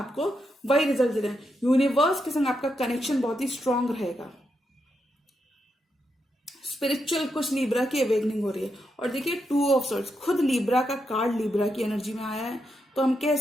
वही रिजल्ट दे रहे हैं। यूनिवर्स के संग आपका कनेक्शन बहुत ही स्ट्रांग रहेगा। स्पिरिचुअल कुछ लिब्रा की अवेकनिंग हो रही है। और देखिए 2 ऑफ सॉर्ड्स, खुद लिब्रा का कार्ड लिब्रा की एनर्जी में आया है, तो हम कह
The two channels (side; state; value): both; normal; correlation 0.83